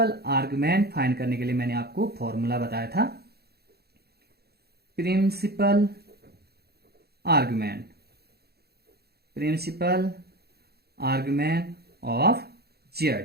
आर्गुमेंट फाइंड करने के लिए मैंने आपको फॉर्मूला बताया था, principal argument, principal argument of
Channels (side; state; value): left; late; 0.46 ms